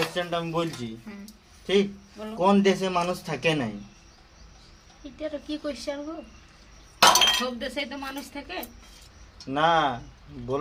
আমি বলছি, হ্যাঁ, ঠিক? বলো। কোন দেশে মানুষ থাকে নাই? এটা তো কি কোশ্চেন গো? সব দেশে তো মানুষ থাকে। না,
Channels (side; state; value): both; identical; correlation 1.00